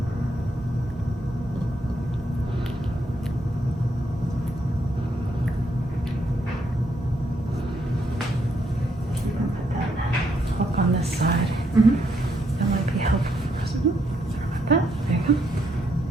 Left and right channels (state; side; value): normal; both; correlation 0.75